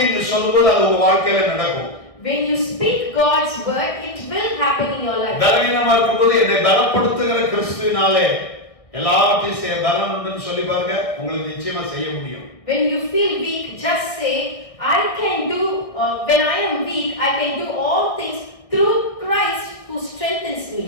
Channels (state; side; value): late; right; 1.6 ms